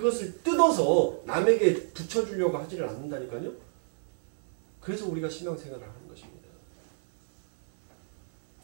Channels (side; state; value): left; silent; digital silence